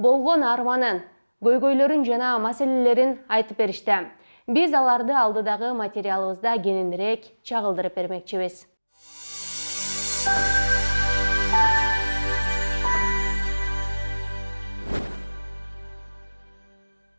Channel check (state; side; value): inverted; both; correlation -1.00